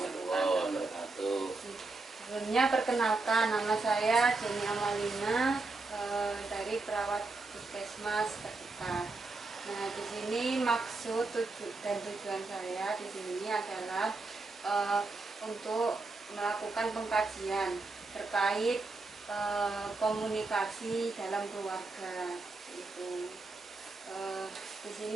wabarakatuh. Sebelumnya perkenalkan, nama saya Jenny Amalina dari perawat puskesmas terdekat. Nah, di sini maksud dan tujuan saya di sini adalah untuk melakukan pengkajian terkait komunikasi dalam keluarga. Di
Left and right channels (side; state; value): left; quieter; 3.5 dB